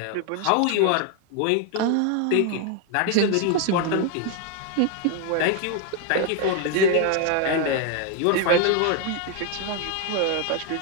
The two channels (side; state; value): both; different; correlation 0.01